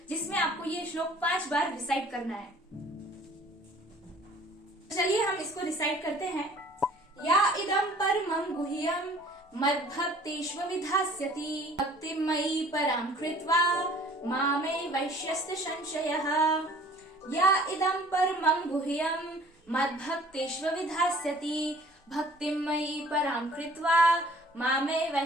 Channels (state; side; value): normal; both; correlation 0.52